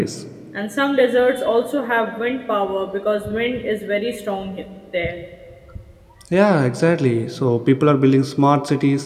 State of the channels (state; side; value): identical; both; correlation 1.00